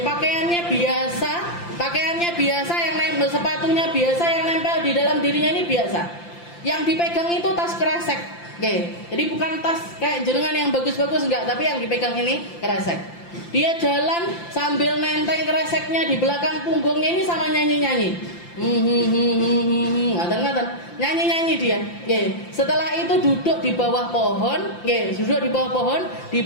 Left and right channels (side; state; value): right; late; 5.8 ms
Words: pakaiannya biasa, yang nempel sepatunya biasa, yang nempel di dalam dirinya ini biasa. Yang dipegang itu tas kresek, jadi bukan tas kayak jenengan yang bagus-bagus enggak, tapi yang dipegang ini kresek. Dia jalan sambil nenteng kreseknya di belakang punggungnya ini sama nyanyi-nyanyi. Ngaten-ngaten, nyanyi-nyanyi dia. Setelah itu duduk di bawah pohon,